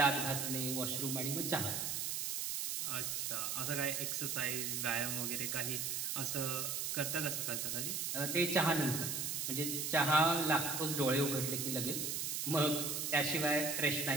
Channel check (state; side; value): noise; right; hiss, 1 dB below the sound